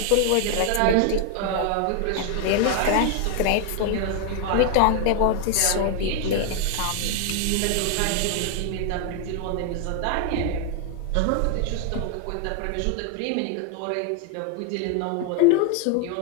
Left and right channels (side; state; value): both; different; correlation 0.00